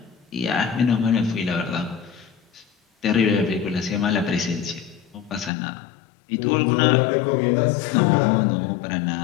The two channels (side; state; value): right; drops out; at 5.5 s